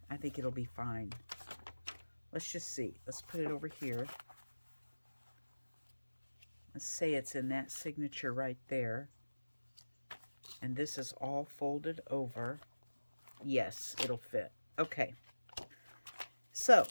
I think it'll be fine. Let's just see. Let's put it over here. Let's say it's in that signature right there. And this is all folded over. Yes, it'll fit. Okay. So,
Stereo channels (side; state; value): both; inverted; correlation -1.00